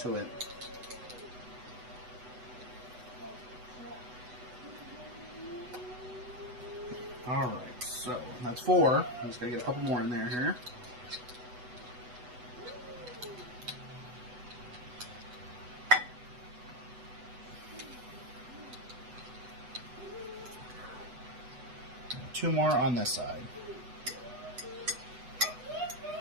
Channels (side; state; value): left; late; 8.0 ms